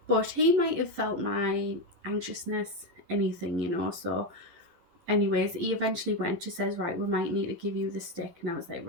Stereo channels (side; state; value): left; late; 12 ms